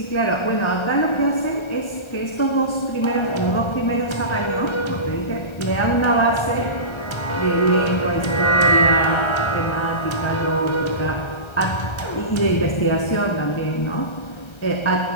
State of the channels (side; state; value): right; late; 1.3 ms